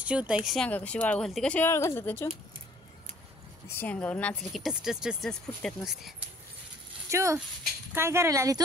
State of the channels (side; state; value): both; normal; correlation 0.56